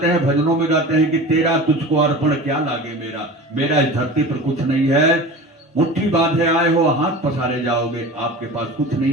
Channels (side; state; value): both; normal; correlation 0.35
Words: हैं, भजनों में गाते हैं कि तेरा तुझको अर्पण क्या लागे मेरा, मेरा इस धरती पर कुछ नहीं है। मुट्ठी बांधे आए हो, हाथ पसारे जाओगे, आपके पास कुछ